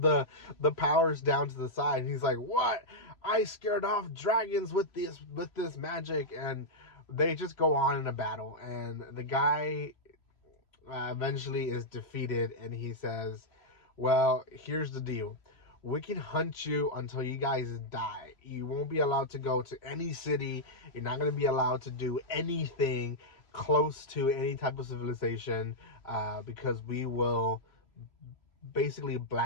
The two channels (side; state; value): right; late; 3.0 ms